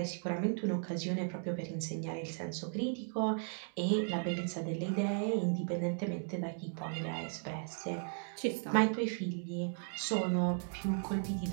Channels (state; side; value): silent; left; 54 dB below the other